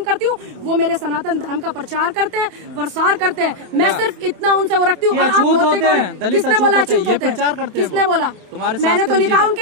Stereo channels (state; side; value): late; left; 28 ms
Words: करती हूँ, वो मेरे सनातन धर्म का प्रचार करते हैं, प्रसार करते हैं। मैं सिर्फ इतना उनसे वो रखती हूँ। और आप होते कौन? किसने बोला अछूत होते हैं? किसने बोला? मैंने तो नहीं कहा